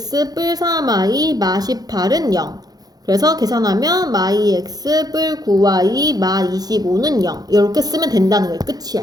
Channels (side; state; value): left; late; 0.19 ms